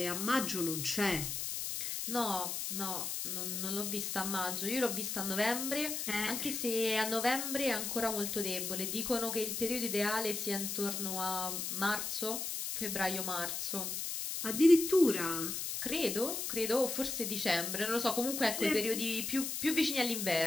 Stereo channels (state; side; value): noise; left; hiss, 3 dB below the sound